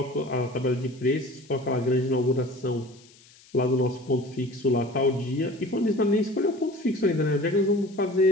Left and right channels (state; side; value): noise; left; hiss, 26 dB below the sound